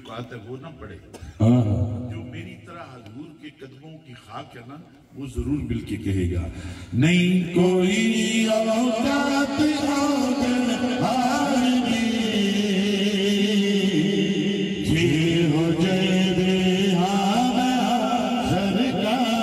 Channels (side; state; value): both; identical; correlation 1.00